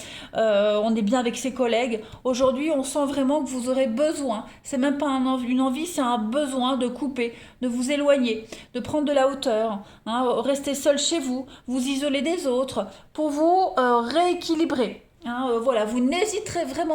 on est bien avec ses collègues. Aujourd'hui, on sent vraiment que vous aurez besoin, c'est même pas une envie, c'est un besoin de couper, de vous éloigner, de prendre de la hauteur, hein, rester seul chez vous, vous isoler des autres, pour vous rééquilibrer. Hein, voilà, vous n'hésiterez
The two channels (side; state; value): both; identical; correlation 1.00